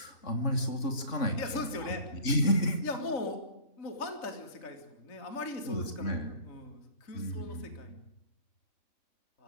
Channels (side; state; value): right; late; 3.5 ms